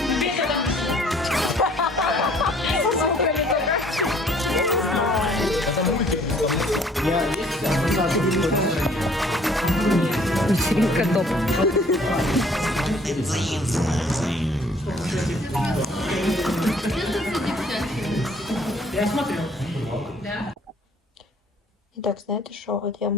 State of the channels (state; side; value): normal; both; correlation 0.58